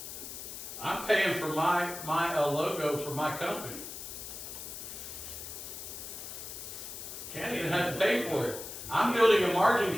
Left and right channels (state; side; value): noise; left; hiss, 9 dB below the sound